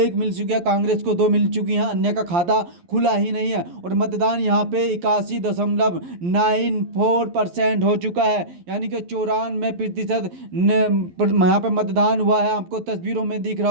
मिल चुकी है, कांग्रेस को 2 मिल चुकी हैं, अन्य का खाता खुला ही नहीं है। और मतदान यहाँ पे 81.94% हो चुका है, यानी कि 94% यहाँ पे मतदान हुआ है। आपको तस्वीरों में दिख रहा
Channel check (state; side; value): late; left; 11 ms